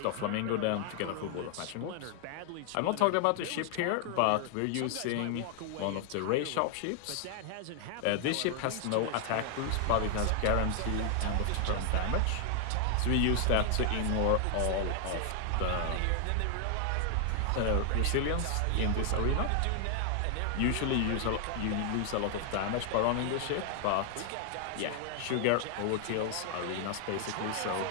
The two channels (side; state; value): both; different; correlation 0.00